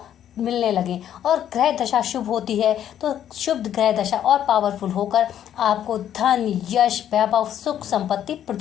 मिलने लगे। और ग्रह दशा शुभ होती है तो शुभ ग्रह दशा और पावरफुल होकर आपको धन, यश, वैभव, सुख, संपत्ति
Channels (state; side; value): quieter; right; 10.5 dB